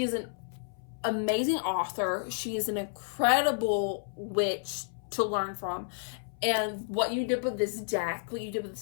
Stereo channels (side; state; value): right; silent; 57 dB below the other